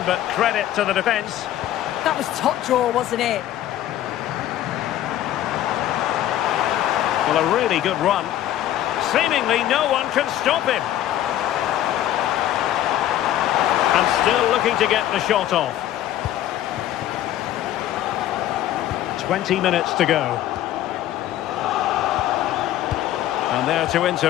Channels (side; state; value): right; quieter; 12.7 dB